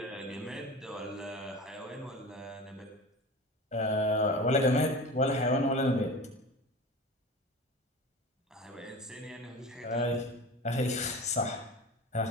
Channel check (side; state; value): both; normal; correlation 0.32